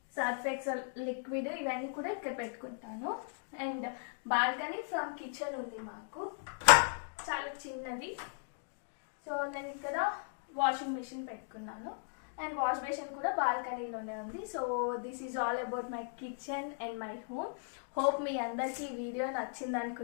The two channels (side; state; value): right; silent; digital silence